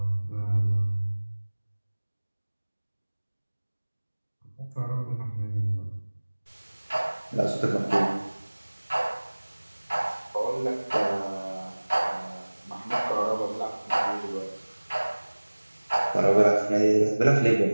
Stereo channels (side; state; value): both; inverted; correlation -1.00